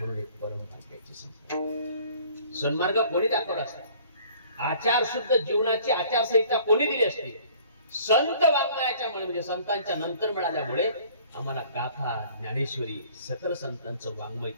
एक परम भाग्याची संस्था. सन्मार्ग कोणी दाखवला असता? आचार शुद्ध जीवनाची आचारसंहिता कोणी दिली असती? संत वाङ्मयाच्या म्हणजे संतांच्या नंतर मिळाल्यामुळे आम्हाला गाथा, ज्ञानेश्वरी, सकल संतांचं वाङ्मय,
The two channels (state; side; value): inverted; both; correlation -0.53